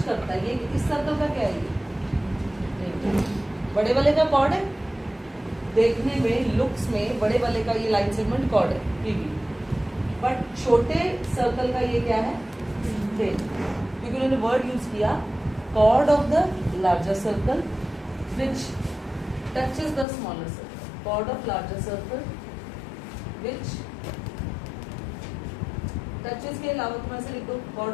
करता है, ये इस सर्कल का क्या है? ये बड़े वाले का कॉर्ड है. देखने में लुक्स में बड़े वाले का ये लाइन सेगमेंट कॉर्ड है PB, बट छोटे सर्कल का ये क्या है? क्योंकि उन्होंने वर्ड यूज किया chord of the larger circle which touches the smaller circle. Chord of larger circle which touches के अलावा तुम ऐसे लिखो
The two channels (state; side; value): drops out; right; at 20.1 s